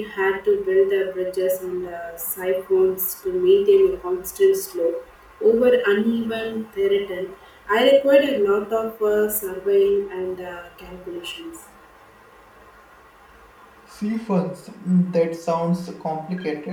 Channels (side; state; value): both; identical; correlation 1.00